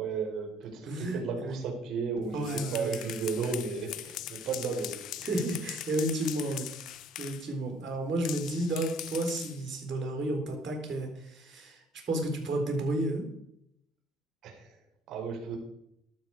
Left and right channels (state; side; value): normal; both; correlation 0.59